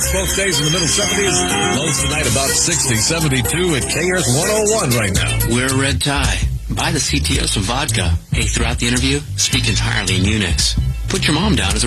both days in the middle 70s. Lows tonight about 60, 72 at KRTH 101 right now. Wear a red tie. Buy the CTO some vodka. Hey, throughout the interview, speak entirely in Unix. Put your mom down as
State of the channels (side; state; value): both; identical; correlation 1.00